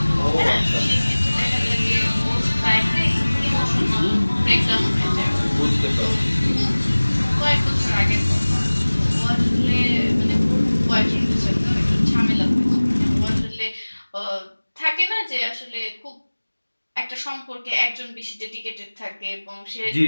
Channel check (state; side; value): inverted; both; correlation -1.00